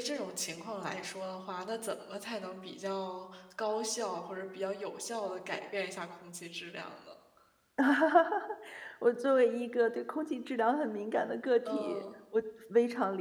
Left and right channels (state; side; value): identical; both; correlation 1.00